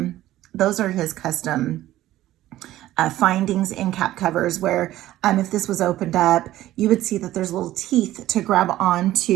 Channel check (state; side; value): quieter; left; 14.6 dB